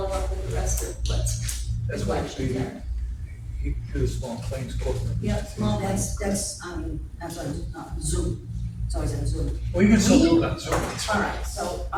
up with the rest of what's That's why collections we, are. he do the small claims court. Yeah, small ones. That's on Zoom. It's always on Zoom. Well, you can still do it on Zoom. It's All fine. right, so,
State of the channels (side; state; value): both; identical; correlation 1.00